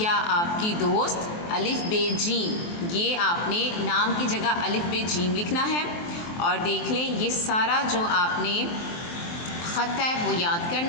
आपकी दोस्त अलिफ बे जीम। ये आपने नाम की जगह अलिफ बे जीम लिखना है। और देख लें, ये सारा जो आपने ख़त है वो याद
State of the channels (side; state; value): right; late; 23 ms